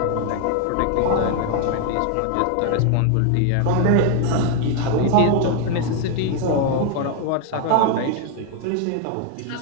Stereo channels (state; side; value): different; both; correlation 0.01